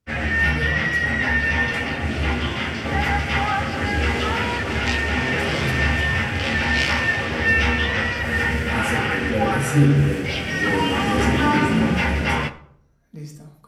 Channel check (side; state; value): both; identical; correlation 1.00